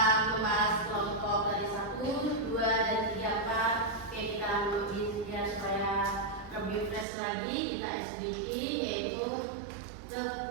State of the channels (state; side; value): drops out; left; at 7.1 s